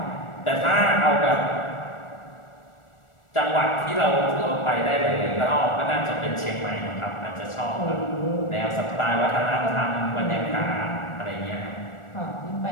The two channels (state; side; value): late; right; 1.4 ms